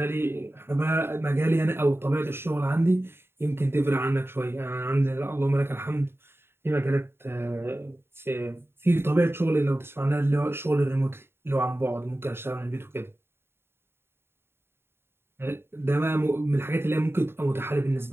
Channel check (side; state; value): left; late; 0.11 ms